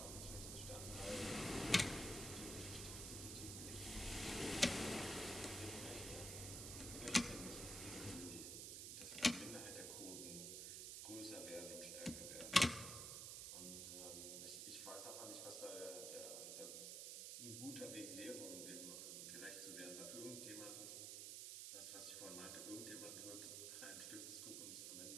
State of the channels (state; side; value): noise; right; hiss, 4 dB below the sound